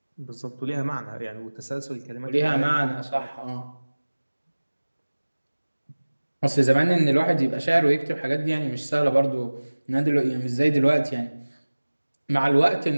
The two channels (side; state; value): both; inverted; correlation -1.00